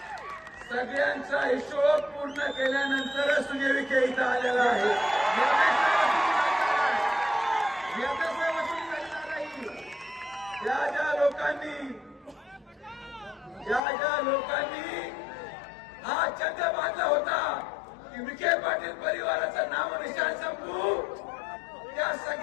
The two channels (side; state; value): right; drops out; at 13.8 s